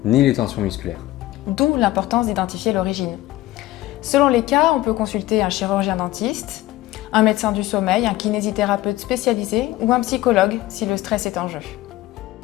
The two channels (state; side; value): quieter; right; 16.3 dB